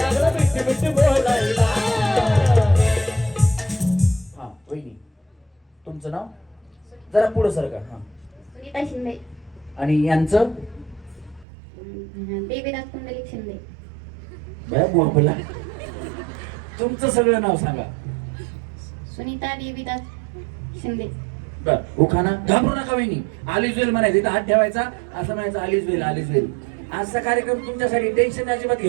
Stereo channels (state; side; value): drops out; left; at 11.5 s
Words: बिट बिट बोलायला. हा वहिनी तुमचं नाव जरा पुढं सरका. हा सुनीता शिंदे. आणि यांचं देवीदास पुंडलिक शिंदे. बया बोला. तुमचं सगळं नाव सांगा. सुनीता देवीदास शिंदे. बर उखाणा. घाबरू नका वहिनी. आलीच वेल म्हणायचं, इथं हात ठेवायचा, असं म्हणायचं आलीच वेल आलीच वेल. आजचा कार्यक्रम तुमच्यासाठी टेन्शन अजिबात